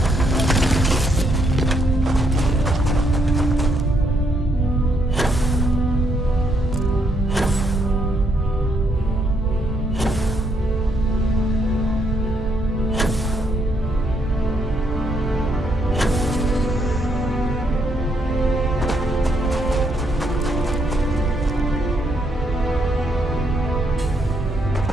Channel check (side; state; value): both; normal; correlation 0.74